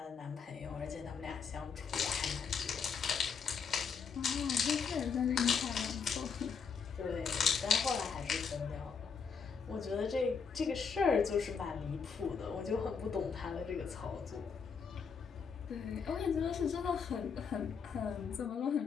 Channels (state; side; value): quieter; right; 6.0 dB